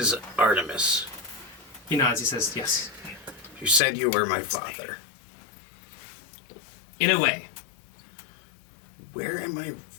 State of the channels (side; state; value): right; drops out; at 3.8 s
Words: Artemis. He nods, he says, yes. You said you were my father. In a way. Where am I